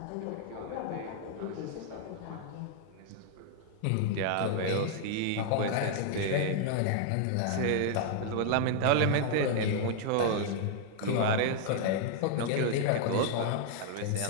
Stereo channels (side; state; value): both; different; correlation 0.00